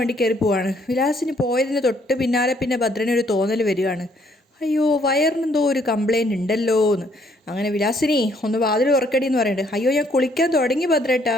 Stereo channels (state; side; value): normal; both; correlation 0.67